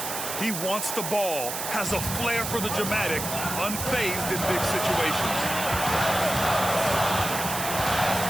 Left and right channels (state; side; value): noise; right; hiss, 4 dB below the sound